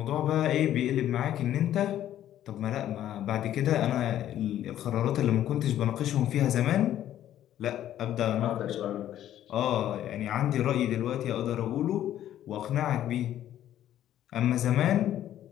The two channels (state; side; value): quieter; right; 11.9 dB